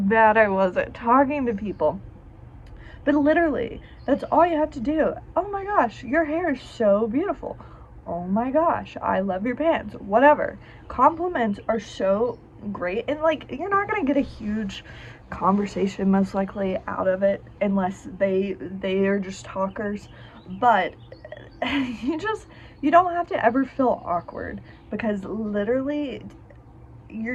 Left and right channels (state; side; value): identical; both; correlation 1.00